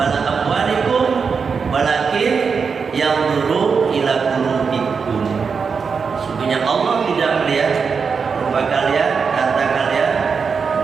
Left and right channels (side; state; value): left; quieter; 5.6 dB